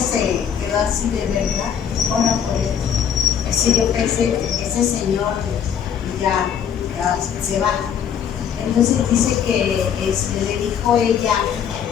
quedó así, ¿de verdad? Ora por él. Así yo pensé, ese señor ya se va. Entonces dice que le dijo ella,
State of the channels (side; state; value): right; quieter; 8.3 dB